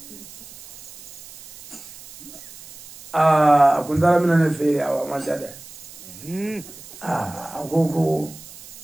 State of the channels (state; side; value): noise; right; hiss, 17 dB below the sound